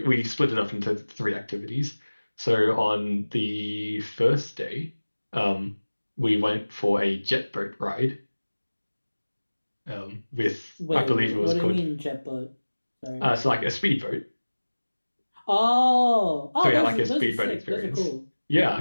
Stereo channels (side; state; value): both; inverted; correlation -1.00